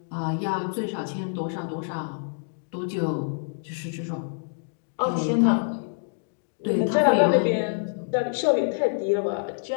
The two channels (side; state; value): right; silent; digital silence